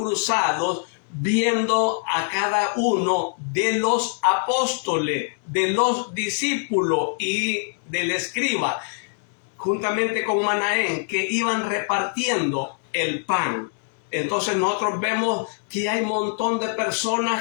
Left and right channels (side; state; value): right; silent; 57 dB below the other